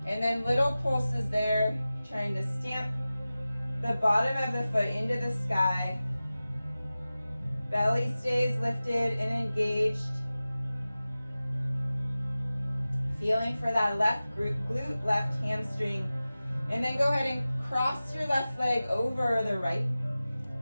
And then little pulses there. Trying to stamp the bottom of the foot into the sky. Belly stays lifted and engaged. Feeling for that left glute, left hamstring. And then go ahead and cross your left leg over the right.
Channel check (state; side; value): inverted; both; correlation -0.96